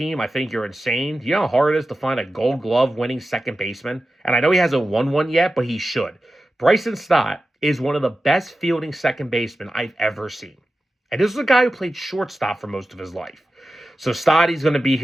I think you're insane. Do you know how hard it is to find a Gold Glove winning second baseman? And I know he hasn't won one yet, but he should. Bryson Stott is one of the best fielding second basemen I've ever seen. And this is a guy who played shortstop for most of his life. So Stottie's going to be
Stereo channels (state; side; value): normal; both; correlation 0.93